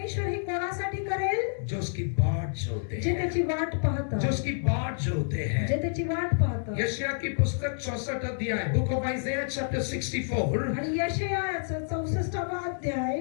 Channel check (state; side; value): silent; right; digital silence